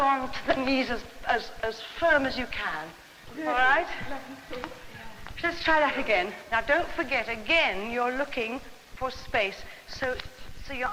to the knees as firm as you can, all right? Let's try that again. Now, don't forget, again, you're looking for space, so your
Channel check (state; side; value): identical; both; correlation 1.00